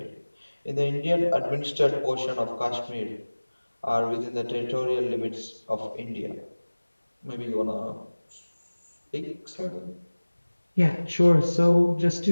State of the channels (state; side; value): inverted; both; correlation -1.00